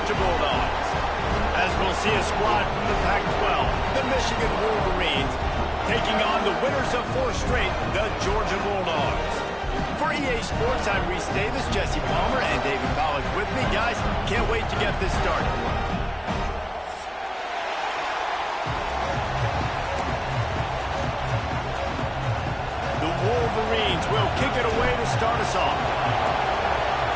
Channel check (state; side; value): identical; both; correlation 1.00